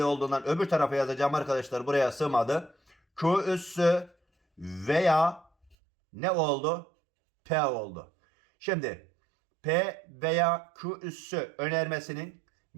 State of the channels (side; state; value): left; drops out; at 5.8 s